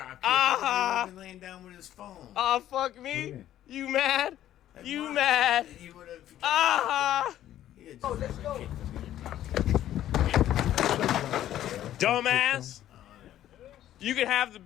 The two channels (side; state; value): right; quieter; 12.3 dB